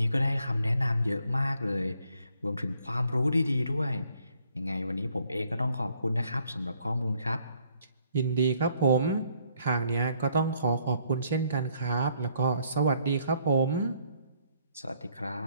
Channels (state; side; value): inverted; both; correlation -0.67